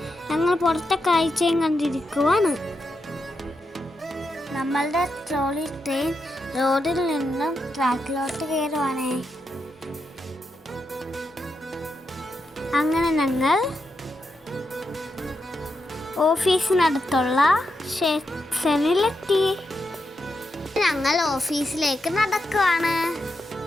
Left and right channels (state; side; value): normal; both; correlation 0.85